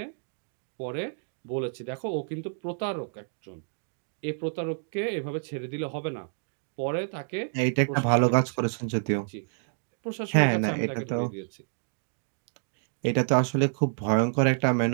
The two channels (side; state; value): left; silent; digital silence